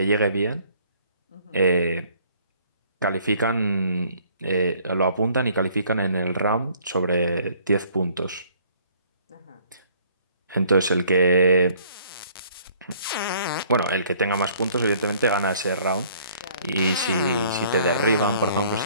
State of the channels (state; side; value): inverted; both; correlation -0.59